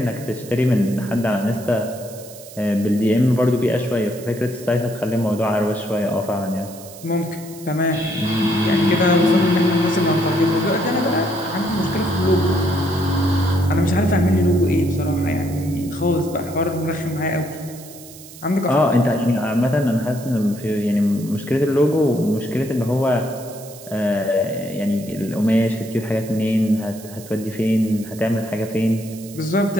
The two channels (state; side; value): noise; right; hiss, 18 dB below the sound